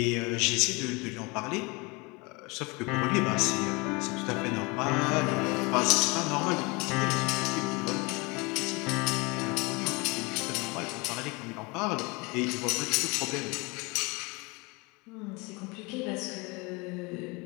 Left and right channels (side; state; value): right; quieter; 27.0 dB